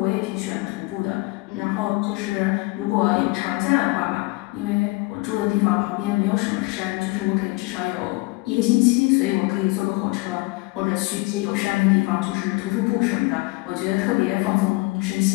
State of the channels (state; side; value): quieter; right; 24.0 dB